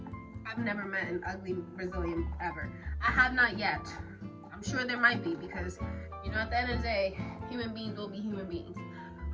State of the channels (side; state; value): both; identical; correlation 1.00